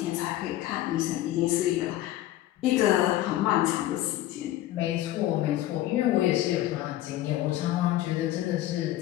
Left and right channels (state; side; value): quieter; right; 14.4 dB